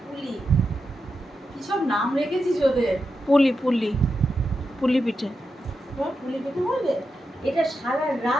পুলি কি সব নাম রেখেছিস ওদের? পুলি পুলি পুলি পিঠে। তোমার পুলি পেতে বলবে? এটা সারা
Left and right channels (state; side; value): normal; both; correlation 0.87